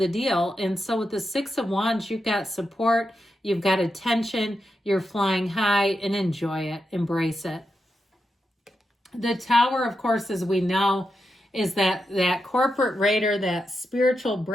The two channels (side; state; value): both; normal; correlation 0.87